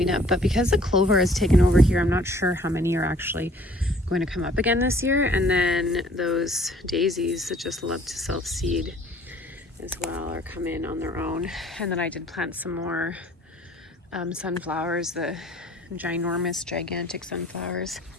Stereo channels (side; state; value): both; normal; correlation 0.56